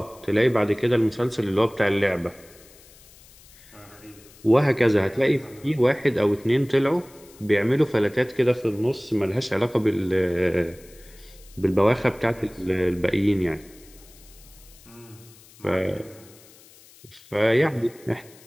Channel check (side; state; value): left; noise; hiss, 24 dB below the sound